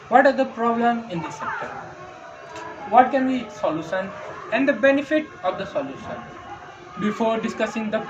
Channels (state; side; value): identical; both; correlation 1.00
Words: What are the problems in this sector? What can be its solution and the benefit of the solution? Before discussing the